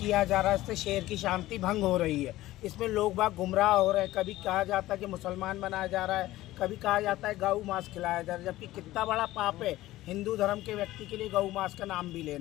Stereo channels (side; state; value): right; quieter; 16.3 dB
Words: जा रहा है इससे शहर की शांति भंग हो रही है। इसमें लोग बाग गुमराह हो रहे हैं। कभी कहा जाता है कि मुसलमान बनाया जा रहा है, कभी कहा जाता है गौ मांस खिलाया जा रहा है, जबकि कितना बड़ा पाप है हिंदू धर्म के व्यक्ति के लिए गौ मांस का नाम भी